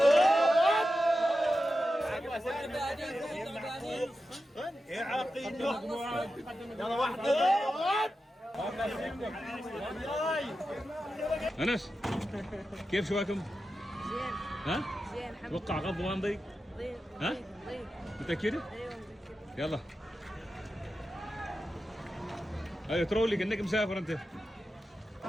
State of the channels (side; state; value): both; normal; correlation 0.91